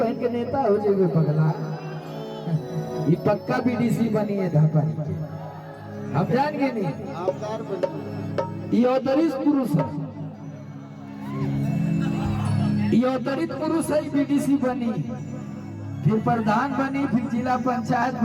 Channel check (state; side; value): identical; both; correlation 1.00